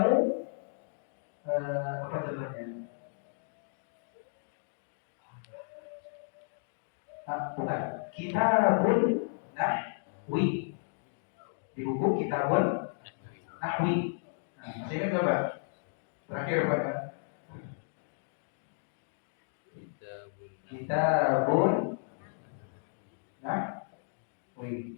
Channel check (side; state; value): right; silent; digital silence